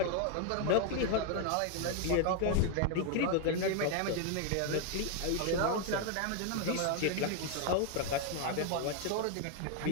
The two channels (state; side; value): different; both; correlation 0.01